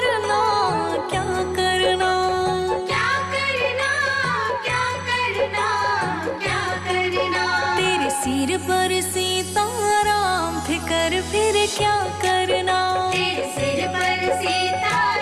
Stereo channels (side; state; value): both; identical; correlation 1.00